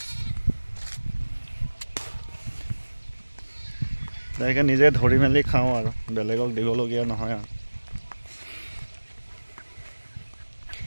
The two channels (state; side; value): inverted; both; correlation -1.00